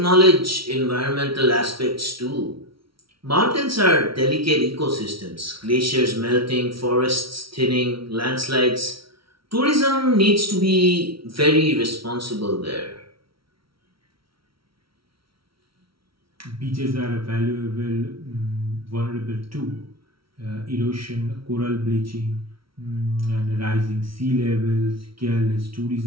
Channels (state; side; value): late; left; 0.75 ms